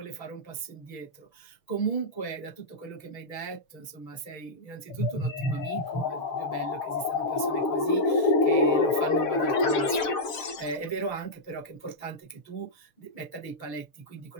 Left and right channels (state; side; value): late; right; 6.6 ms